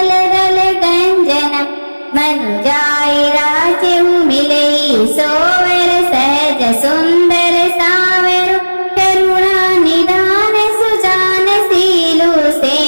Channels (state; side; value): inverted; both; correlation -1.00